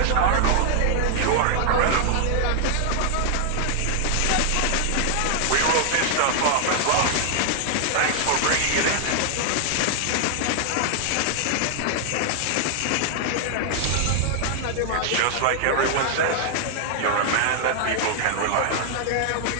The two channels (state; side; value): different; both; correlation 0.00